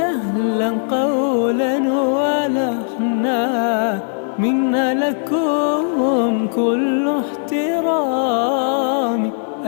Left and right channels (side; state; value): right; silent; digital silence